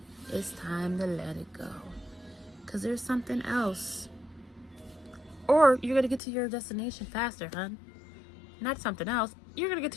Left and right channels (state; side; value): drops out; right; at 6.2 s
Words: it's time to let it go, because there's something else. Or you're gonna get to your destination faster, hun. Not something else. You're gonna get